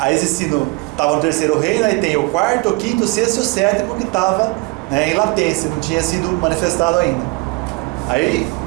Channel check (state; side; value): quieter; left; 26.5 dB